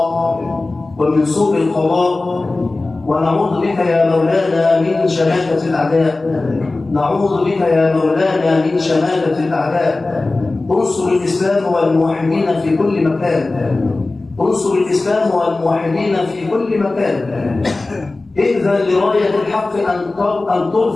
ومن سوء القضاء، ونعوذ بك يا مولانا من شماتة الأعداء. نعوذ بك يا مولانا من شماتة الأعداء. انصر الإسلام والموحدين في كل مكان، انصر الإسلام والموحدين في كل مكان. إذن لراية الحق أن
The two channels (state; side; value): quieter; right; 3.2 dB